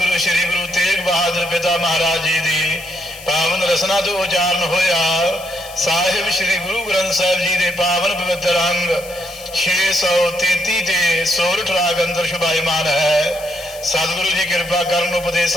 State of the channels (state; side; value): noise; left; hiss, 17 dB below the sound